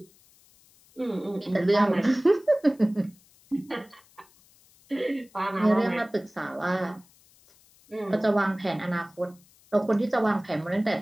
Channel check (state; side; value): noise; left; hiss, 29 dB below the sound